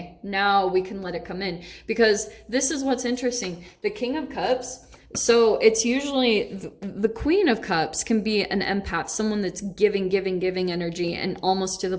now we can let it come in, because this is what's interesting. The King of Cups, so it's usually the Queen of Cups can be an empath, someone that's giving energy and almost to the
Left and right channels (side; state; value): both; identical; correlation 1.00